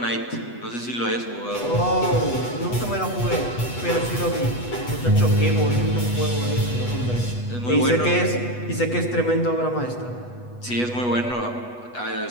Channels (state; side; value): late; right; 8.2 ms